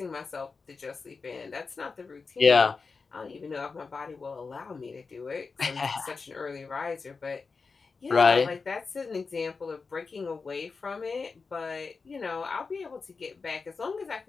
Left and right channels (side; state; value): right; quieter; 4.6 dB